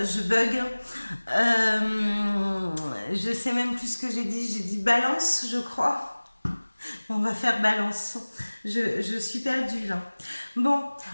je bug. Je sais même plus ce que j'ai dit balance, je crois. On va faire balance. Je suis perdue là. Bon,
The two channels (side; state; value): both; inverted; correlation -1.00